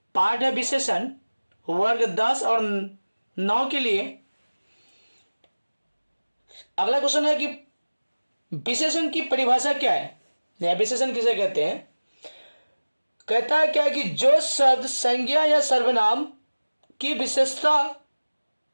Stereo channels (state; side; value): inverted; both; correlation -1.00